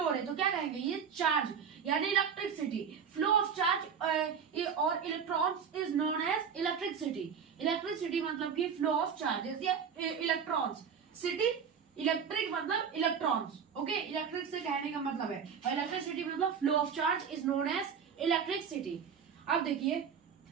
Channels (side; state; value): left; quieter; 7.0 dB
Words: रहे। तो क्या कहेंगे? ये चार्ज यानी इलेक्ट्रिसिटी। फ्लो ऑफ चार्ज और electrons is known as electricity. Electricity मतलब कि फ्लो ऑफ चार्जेस या इलेक्ट्रॉन्स। सिटी इलेक्ट्रिक मतलब इलेक्ट्रॉन्स। ओके, इलेक्ट्रिक से कहने का मतलब है, और इलेक्ट्रिसिटी मतलब flow of charge is known as electricity. अब देखिए,